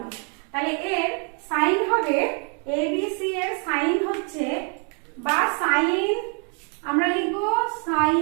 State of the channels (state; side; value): quieter; left; 39.9 dB